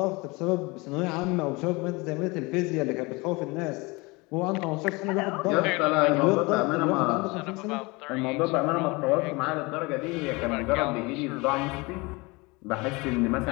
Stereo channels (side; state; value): right; quieter; 25.4 dB